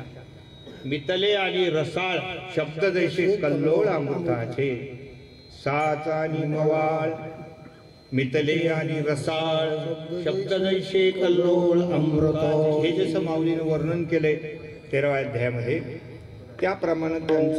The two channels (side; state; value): both; identical; correlation 1.00